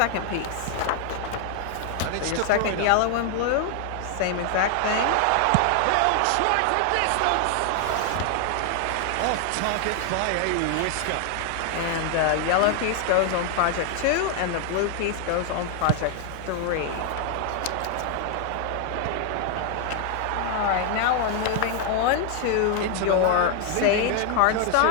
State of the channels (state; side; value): different; both; correlation 0.00